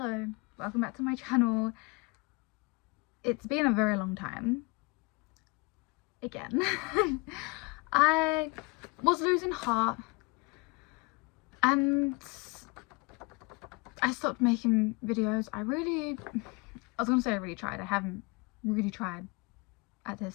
welcome back to my channel. It's been a very long time. Again. I was losing heart and I stopped making videos. I was gonna say I really tried. I haven't really tried at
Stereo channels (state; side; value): quieter; right; 28.2 dB